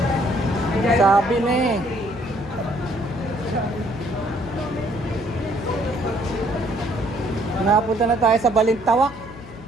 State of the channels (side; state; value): left; noise; hum, 17 dB below the sound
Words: Sabi na eh. Napunta na tayo sa Balintawak.